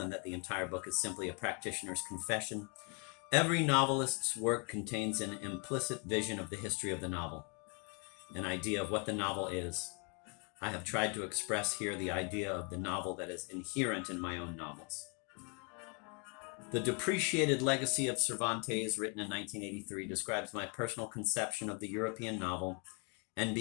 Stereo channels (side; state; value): right; quieter; 35.7 dB